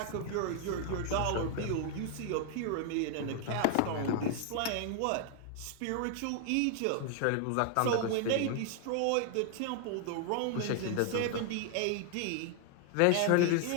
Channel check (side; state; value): both; different; correlation 0.00